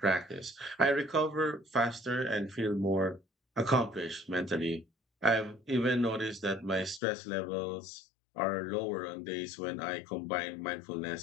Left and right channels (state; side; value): drops out; right; at 7.0 s